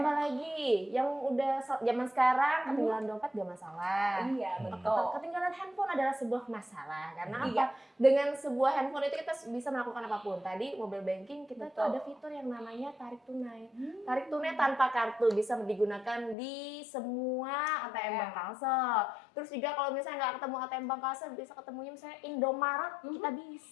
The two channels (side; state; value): right; drops out; at 16.4 s